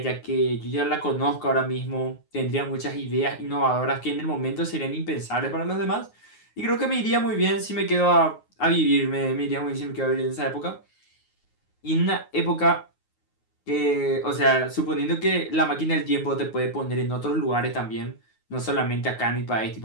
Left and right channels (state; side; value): late; right; 9.5 ms